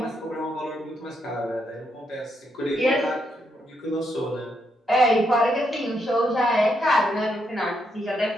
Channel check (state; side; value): normal; both; correlation 0.79